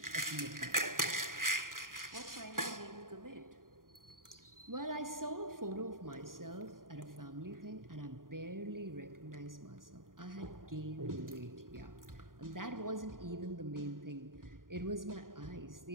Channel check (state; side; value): late; left; 0.90 ms